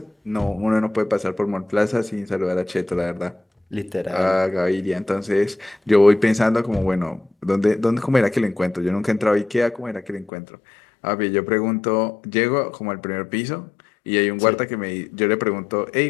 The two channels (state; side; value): drops out; right; at 10.3 s